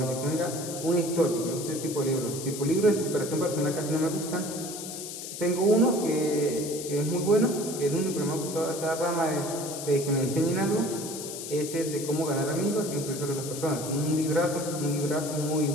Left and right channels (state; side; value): noise; left; hiss, 9 dB below the sound